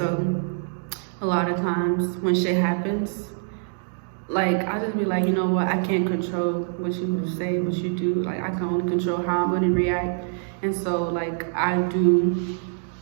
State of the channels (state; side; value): silent; left; digital silence